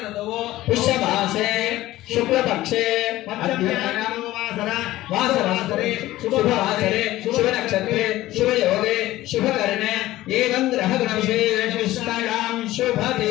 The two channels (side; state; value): right; quieter; 16.1 dB